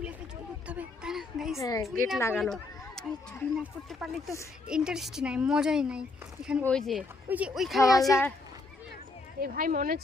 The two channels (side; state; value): right; quieter; 3.4 dB